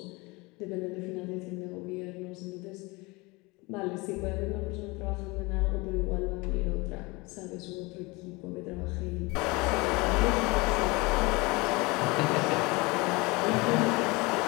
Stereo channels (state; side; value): quieter; right; 24.8 dB